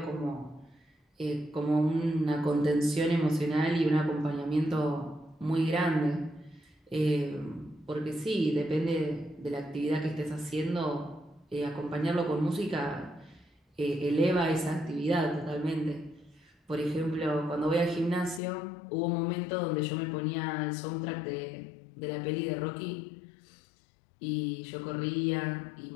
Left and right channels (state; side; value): drops out; right; at 18.4 s